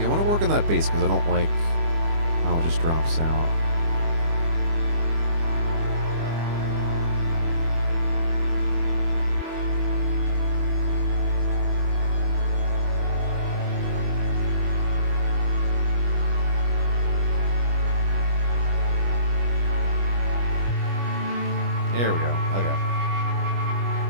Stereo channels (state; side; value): late; left; 25 ms